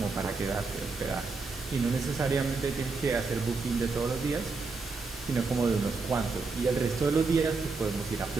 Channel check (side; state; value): left; quieter; 4.1 dB